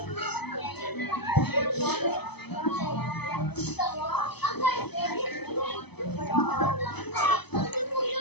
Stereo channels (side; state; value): right; late; 0.98 ms